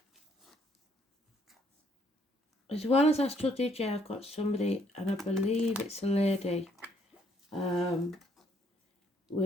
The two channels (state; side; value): normal; both; correlation 0.68